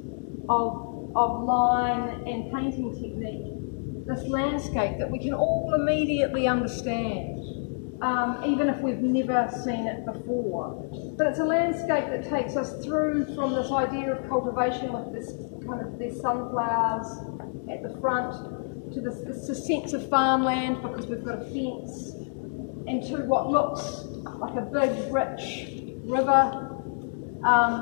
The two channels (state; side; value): silent; right; digital silence